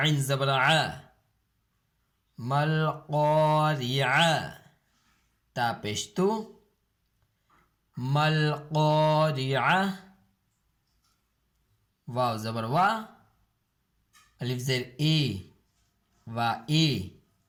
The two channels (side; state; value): both; identical; correlation 1.00